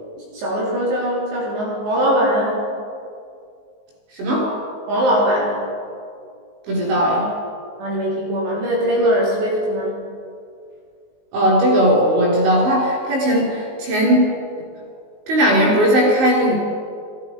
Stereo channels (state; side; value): late; left; 19 ms